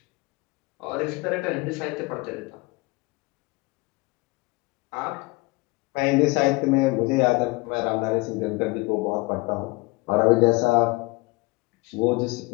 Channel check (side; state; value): right; quieter; 24.4 dB